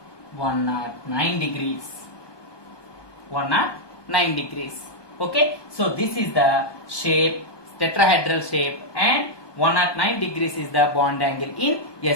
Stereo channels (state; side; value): late; right; 1.2 ms